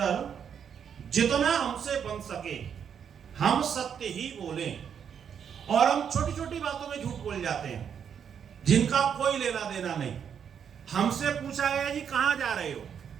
जितना हमसे बन सके हम सत्य ही बोलें। और हम छोटी छोटी बातों में झूठ बोल जाते हैं जिनका कोई लेना देना नहीं। हमसे पूछा गया जी कहां जा रहे हो,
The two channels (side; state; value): left; quieter; 7.8 dB